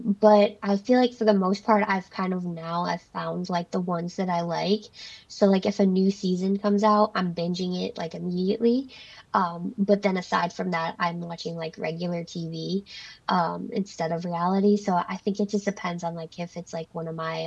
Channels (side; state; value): both; identical; correlation 1.00